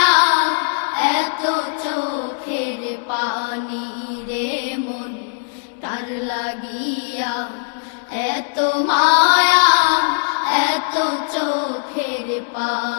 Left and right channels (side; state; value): right; silent; digital silence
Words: এত চোখের পানি রে মন কার লাগিয়া এত মায়া এত চোখের